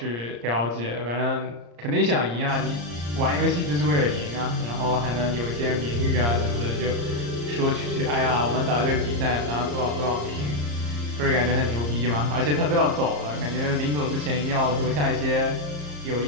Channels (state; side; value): late; left; 34 ms